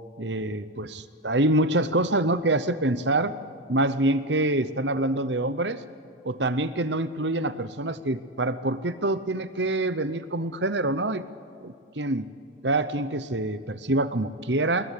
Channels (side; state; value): both; normal; correlation 0.13